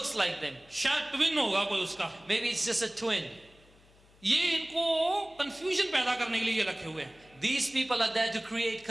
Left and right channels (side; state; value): left; noise; hum, 28 dB below the sound